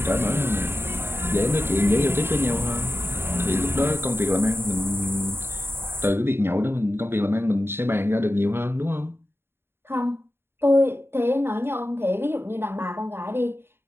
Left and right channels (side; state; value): left; late; 0.11 ms